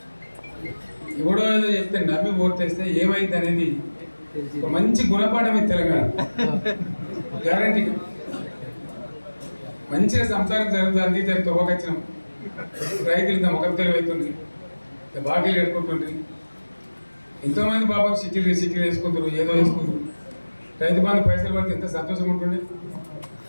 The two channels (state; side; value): inverted; both; correlation -1.00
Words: ఎవడో ఏదో చెప్తే నమ్మి ఓటేస్తే ఏమైంది అనేది ఒక మంచి గుణపాఠం ఇది తెలంగాణ గ్యారంటీ. మంచిగా సంసారం జరుగుతుంది, తొవ్వకొచ్చినాం, రైతులు ఇంత ముఖం తెలివైతుంది, బాకీలు కట్టుకుంటుండ్రి. ఎంతోమంది పాపం సిటీలు వేసుకుంటారు, ఏదో వేసుకుంటారు. రైతు బంధు పైసలు పడితే ఎంత సంతోషం ఉంటుండే.